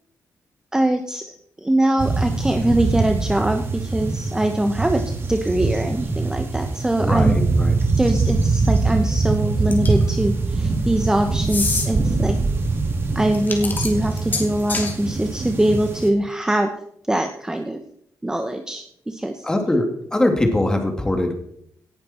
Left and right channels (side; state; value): both; normal; correlation 0.90